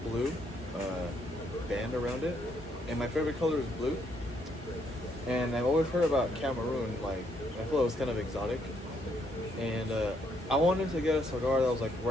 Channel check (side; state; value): both; normal; correlation 0.73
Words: band around it. And my favorite color is blue. And I've always heard about Cameroon, like, I feel it was kind of exotic. And I wanted to get a cigar that was like